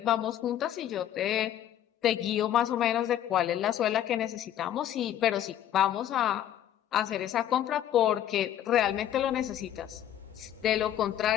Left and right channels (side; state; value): right; quieter; 11.2 dB